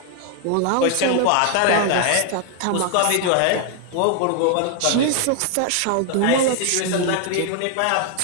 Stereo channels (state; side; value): different; both; correlation 0.00